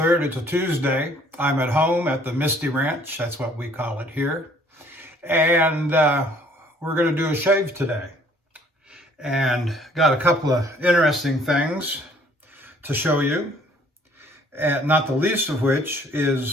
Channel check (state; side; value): normal; both; correlation 0.59